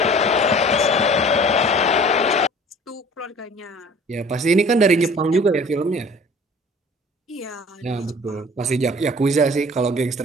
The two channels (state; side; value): normal; both; correlation 0.48